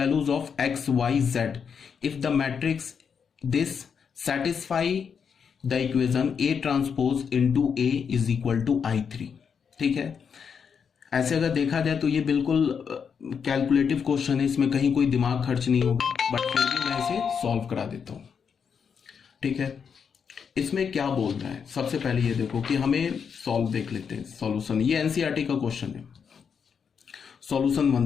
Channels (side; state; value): right; quieter; 6.7 dB